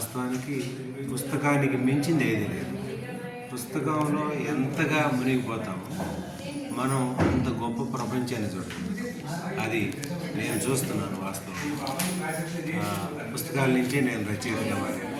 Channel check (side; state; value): both; identical; correlation 1.00